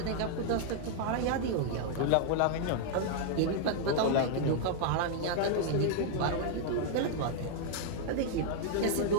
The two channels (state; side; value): different; both; correlation -0.01